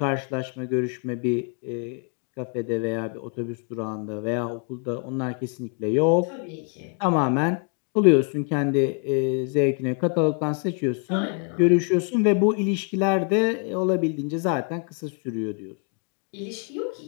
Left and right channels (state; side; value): quieter; right; 40.0 dB